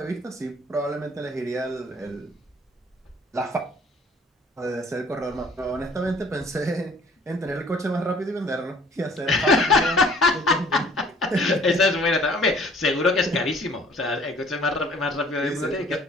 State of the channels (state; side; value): normal; both; correlation 0.55